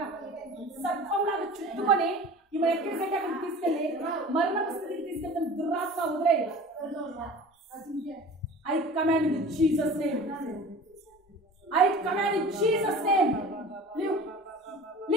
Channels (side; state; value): both; normal; correlation 0.40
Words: సర్పంలాగా చుట్టుకొని ఈమె ఎక్కడికంటే అక్కడికి తీసుకెళ్ళి మరణపు స్థితికి తీసుకెళ్తాను. దురాత్మ వదిలేయి. I command in Jesus' name. I command in Jesus' name. Live.